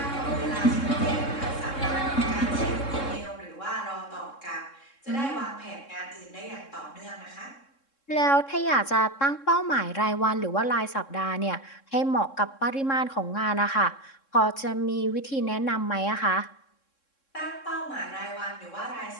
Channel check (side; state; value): right; late; 3.7 ms